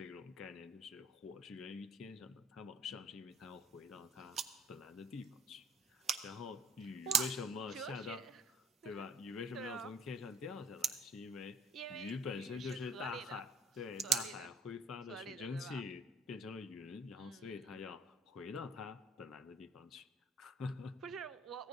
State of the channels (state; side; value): normal; both; correlation 0.54